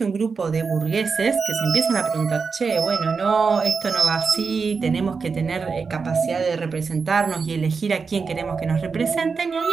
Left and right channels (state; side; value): quieter; left; 5.1 dB